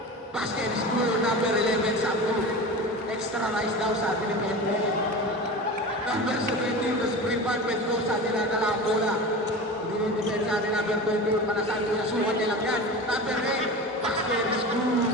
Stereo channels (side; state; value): both; normal; correlation 0.30